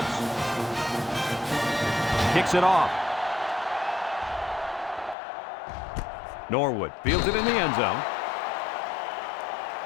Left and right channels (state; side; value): drops out; right; at 5.2 s